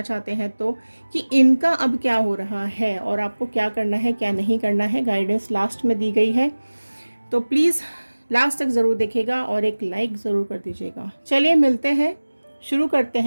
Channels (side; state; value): both; inverted; correlation -1.00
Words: चाहते हैं तो, कि इनका अब क्या हो रहा है और आपको क्या करना है क्या नहीं करना है। गाइडेंस लास्ट में दी गई है, तो प्लीज़ लास्ट तक ज़रूर देखिएगा और एक लाइक ज़रूर कर दीजिएगा। चलिए मिलते हैं, शुरू करते